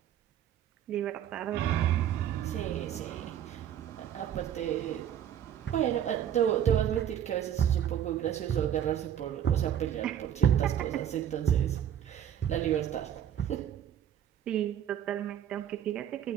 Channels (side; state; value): left; quieter; 10.1 dB